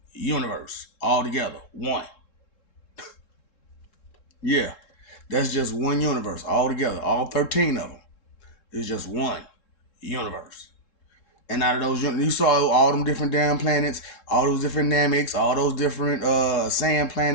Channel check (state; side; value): late; right; 3.7 ms